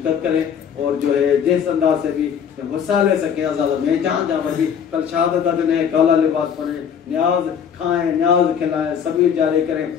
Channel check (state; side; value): quieter; right; 7.8 dB